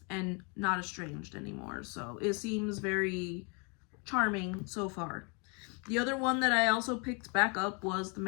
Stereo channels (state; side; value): quieter; right; 34.1 dB